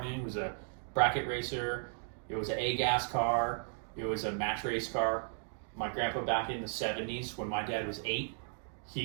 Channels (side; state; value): left; silent; 54 dB below the other